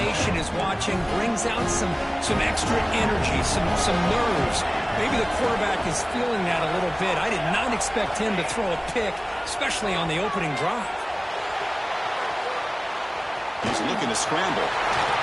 is watching, brings out some extra energy, some nerves. Maybe the quarterback is feeling that a little bit. I did not expect him to throw a pick, especially on the opening drive. He's looking to scramble.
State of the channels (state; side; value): identical; both; correlation 1.00